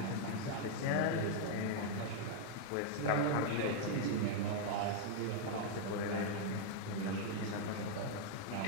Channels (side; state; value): both; different; correlation -0.01